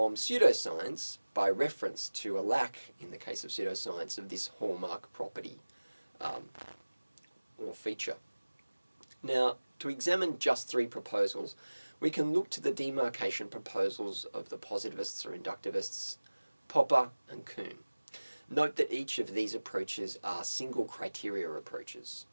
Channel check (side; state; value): both; inverted; correlation -1.00